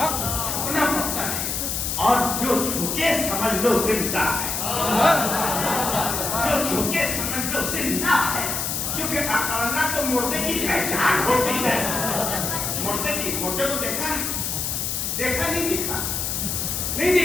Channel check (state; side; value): noise; left; hiss, 1 dB below the sound